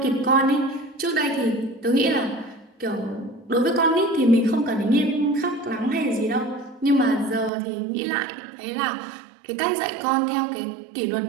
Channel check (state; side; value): drops out; left; at 7.5 s